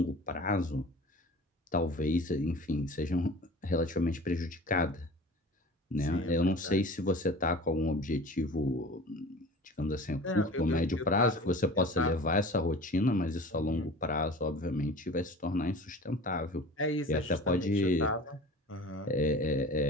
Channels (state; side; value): normal; both; correlation 0.40